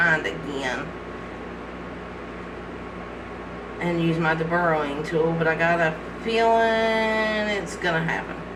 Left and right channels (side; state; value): both; identical; correlation 1.00